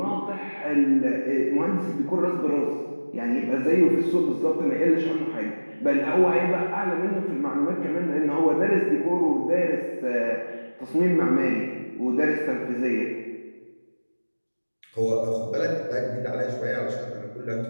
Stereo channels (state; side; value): inverted; both; correlation -1.00